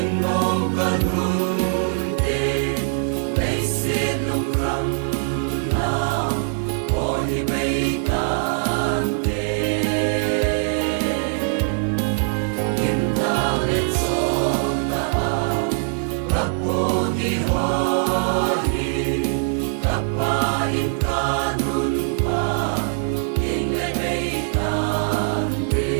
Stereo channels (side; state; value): left; silent; 64 dB below the other